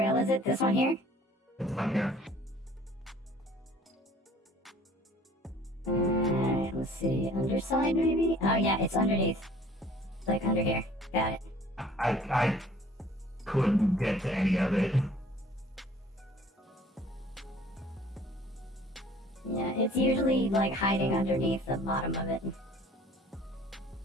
is it? This one here? It's on here. Alright, let's see. Underside, maybe? Oh, yeah, it's underneath. It's like under here. Got it. I couldn't get to any of it. Yeah, it's usually like hiding underneath the bottom of it.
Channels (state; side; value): normal; both; correlation 0.52